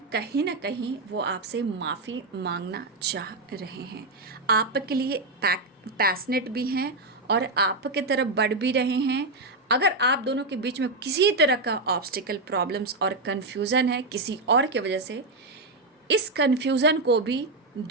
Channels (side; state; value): left; quieter; 3.0 dB